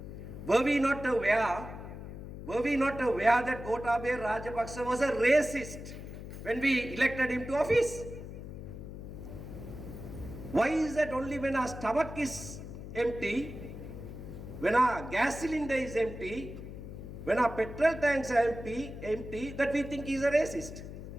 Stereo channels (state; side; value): noise; left; hum, 10 dB below the sound